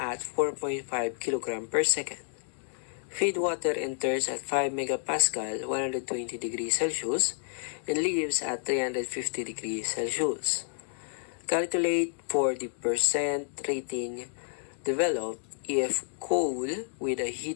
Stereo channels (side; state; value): right; silent; digital silence